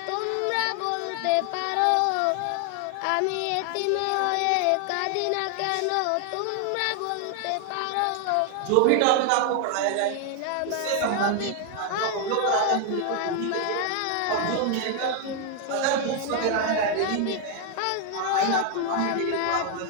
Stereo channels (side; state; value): both; different; correlation 0.00